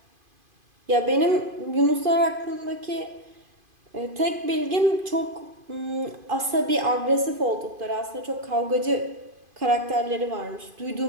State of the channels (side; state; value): left; late; 2.5 ms